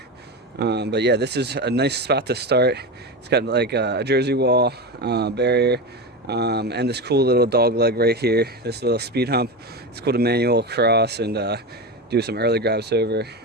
But yeah, this is a nice spot to start. It's got like a jersey wall, barrier, and this cool little dog leg right here, this little speed hump. It's cool to manual cross and do some early grabs over.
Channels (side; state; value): both; normal; correlation 0.21